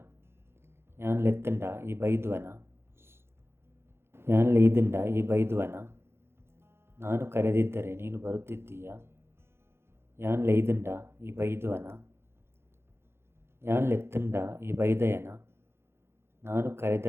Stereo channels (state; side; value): late; left; 0.12 ms